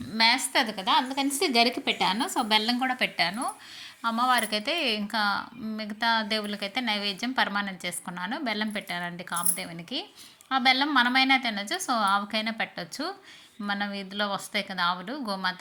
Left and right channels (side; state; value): both; identical; correlation 1.00